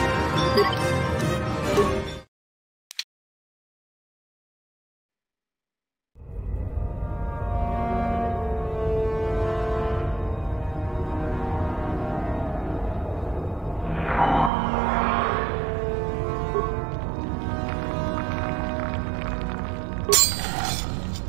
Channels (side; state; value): left; drops out; at 14.5 s